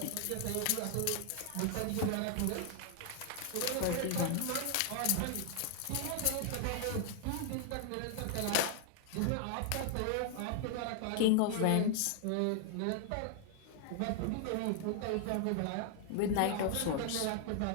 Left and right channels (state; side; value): different; both; correlation 0.00